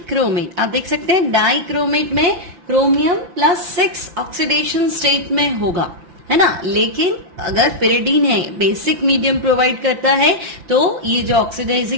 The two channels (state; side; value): late; left; 5.9 ms